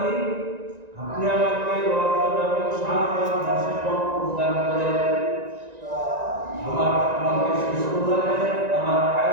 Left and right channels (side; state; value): left; late; 1.9 ms